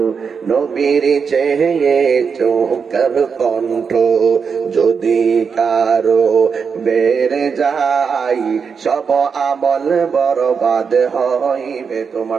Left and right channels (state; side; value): quieter; left; 6.0 dB